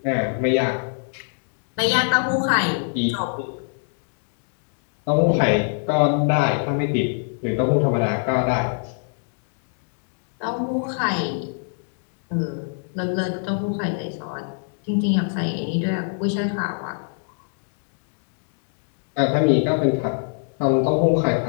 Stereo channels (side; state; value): right; silent; digital silence